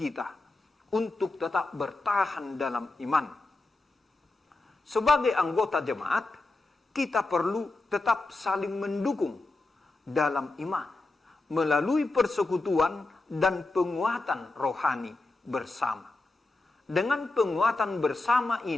untuk tetap bertahan dalam iman. Sebagai anggota jemaat, kita perlu tetap saling mendukung dalam iman melalui persekutuan dan penguatan rohani bersama. Dengan penguatan bersama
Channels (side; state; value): right; quieter; 3.1 dB